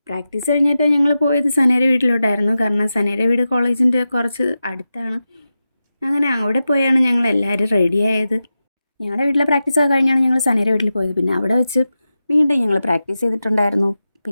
പ്രാക്ടീസ് കഴിഞ്ഞിട്ട് ഞങ്ങൾ പോയത് സനയുടെ വീട്ടിലോട്ടായിരുന്നു. കാരണം സനയുടെ വീട് കോളേജിൻ്റെ കുറച്ച് അടുത്താണ്. അങ്ങനെ അവിടെ പോയാണ് ഞങ്ങൾ എല്ലാവരും റെഡിയായത്. ഞങ്ങളുടെ വീട്ടിലെ പ്രാക്ടീസൊക്കെ കഴിഞ്ഞാണ് ഞങ്ങൾ സനയുടെ വീട്ടിൽ പോയത്. പിന്നെ അവിടെ വെച്ച് വീണ്ടും ഞങ്ങൾ പ്രാക്ടീസ് ചെയ്തിട്ടുണ്ടായിരുന്നു.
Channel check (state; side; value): inverted; both; correlation -0.92